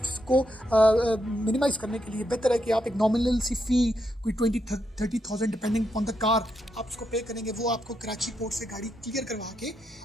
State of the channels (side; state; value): both; normal; correlation 0.81